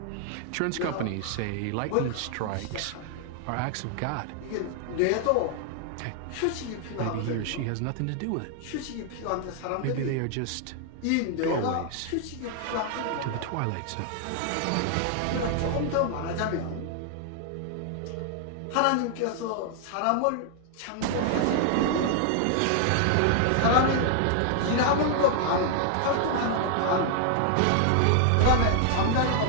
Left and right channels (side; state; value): both; different; correlation 0.00